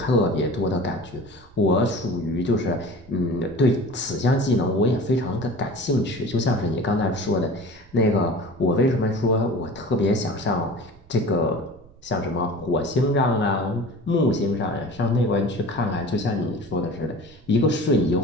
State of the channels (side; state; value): right; noise; rumble, 24 dB below the sound